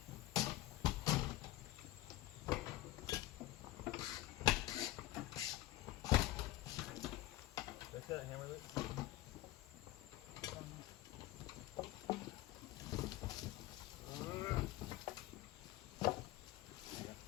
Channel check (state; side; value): quieter; right; 16.4 dB